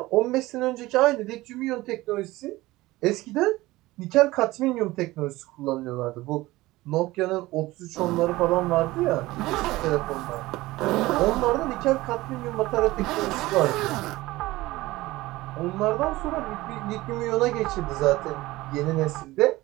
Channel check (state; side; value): quieter; left; 18.8 dB